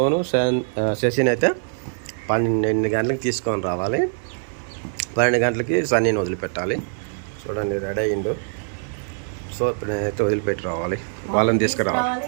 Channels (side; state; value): left; silent; 63 dB below the other